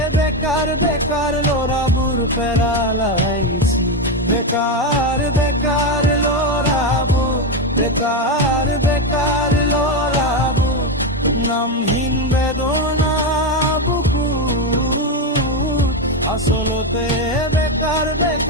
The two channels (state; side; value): normal; both; correlation 0.10